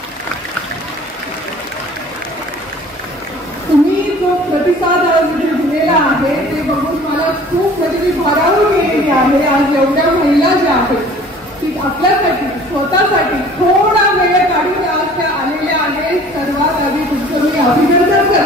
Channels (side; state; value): both; normal; correlation 0.49